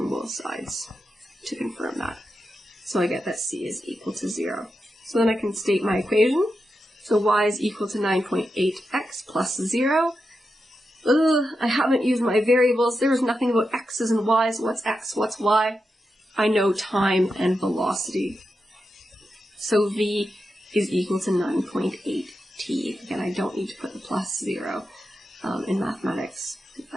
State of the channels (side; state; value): both; normal; correlation 0.88